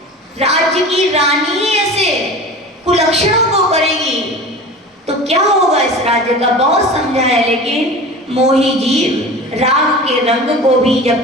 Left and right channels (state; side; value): normal; both; correlation 0.36